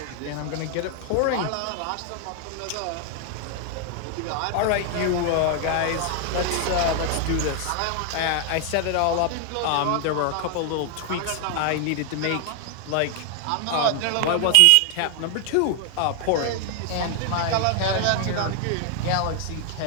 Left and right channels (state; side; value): different; both; correlation 0.00